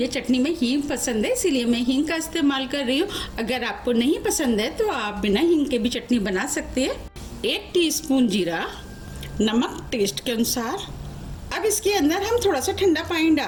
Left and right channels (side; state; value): both; identical; correlation 1.00